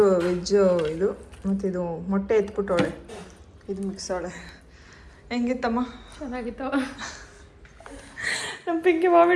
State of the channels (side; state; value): both; identical; correlation 1.00